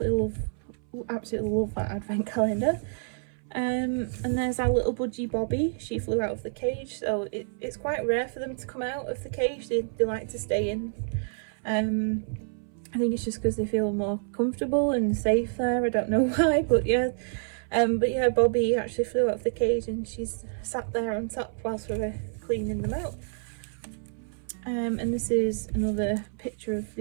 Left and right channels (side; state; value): left; silent; 59 dB below the other